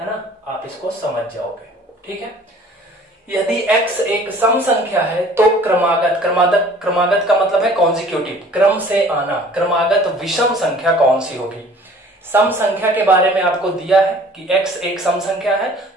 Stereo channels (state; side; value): normal; both; correlation 0.50